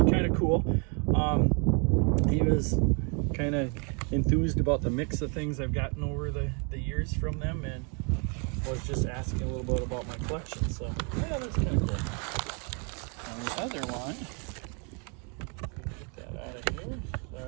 kind of cool. He was kind of enthused about the mix of things I've gotten over the years from them, and was just asking a little bit about my collection. So yeah, that's kind of cool. And the other one, get that out of here,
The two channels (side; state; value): left; quieter; 36.2 dB